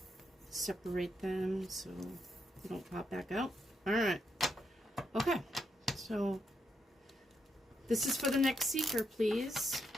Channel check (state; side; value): normal; both; correlation 0.80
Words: Separate them so they don't pop back out. All right. Okay, so this is for the next seeker, please.